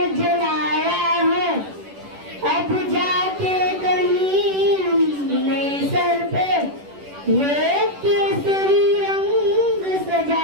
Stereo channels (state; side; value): late; left; 10 ms